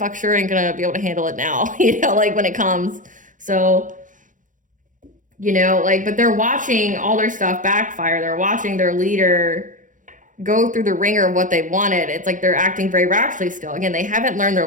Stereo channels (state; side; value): late; left; 0.38 ms